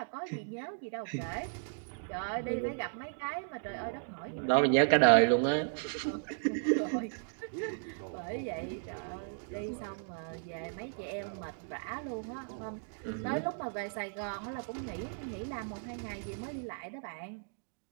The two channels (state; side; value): silent; left; digital silence